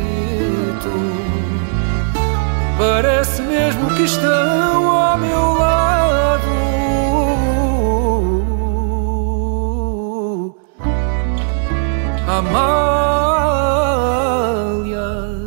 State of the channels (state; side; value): silent; left; 61 dB below the other